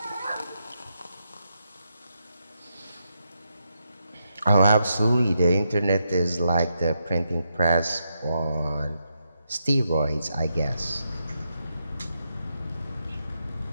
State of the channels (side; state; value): both; inverted; correlation -0.83